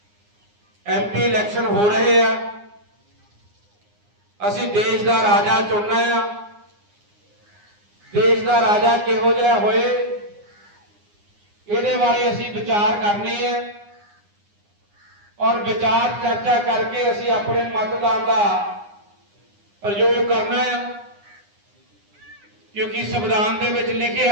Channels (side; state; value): left; late; 9.7 ms